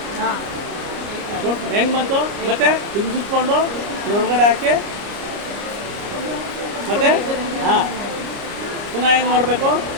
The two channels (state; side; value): late; left; 30 ms